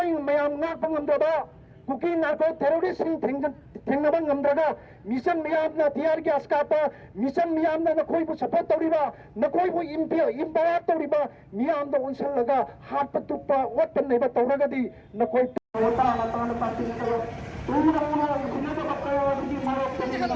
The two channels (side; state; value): both; identical; correlation 1.00